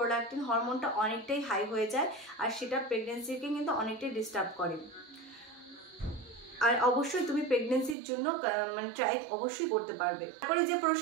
হরমোনটা অনেকটাই হাই হয়ে যায়, আর সেটা প্রেগনেন্সিকে কিন্তু অনেকটাই ডিস্টার্ব করে। আর অবশ্যই তুমি প্রেগনেন্সির জন্য মানে ট্রাই অবশ্যই করতে পারবে। তারপরে যে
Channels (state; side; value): drops out; left; at 8.0 s